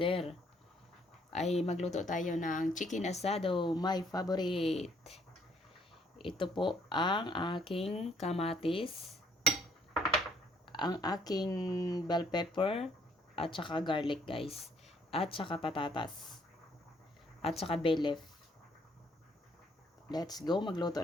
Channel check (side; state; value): both; normal; correlation 0.66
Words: Ay magluto tayo ng chicken asado, my favorite. Ito po ang aking kamatis, ang aking bell pepper, at saka garlic guys, at saka patatas, at saka bay leaf. Let's go, magluto